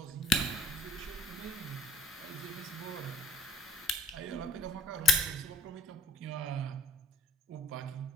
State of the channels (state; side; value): normal; both; correlation 0.49